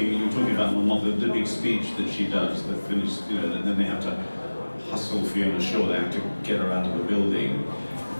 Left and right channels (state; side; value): inverted; both; correlation -1.00